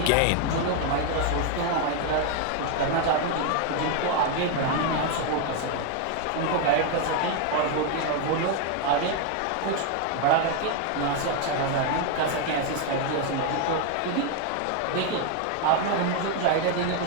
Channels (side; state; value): both; different; correlation 0.01